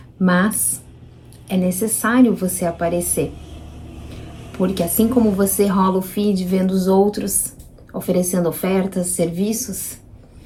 Mas é necessário você aparecer. Porque assim como você rola o feed vendo os outros oferecendo ofertas, serviços,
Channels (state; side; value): identical; both; correlation 1.00